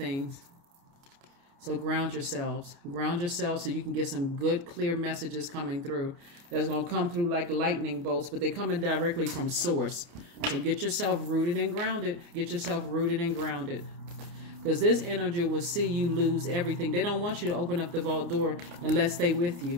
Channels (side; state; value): left; late; 29 ms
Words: So ground yourselves. Ground yourselves so you can get some good, clear messages coming through. That's going to come through like lightning bolts, but they're coming directly from source. So get yourself rooted and grounded. Get yourself rooted and grounded. Because this energy will see you lose everything. They don't want you to open up the vault door unless they with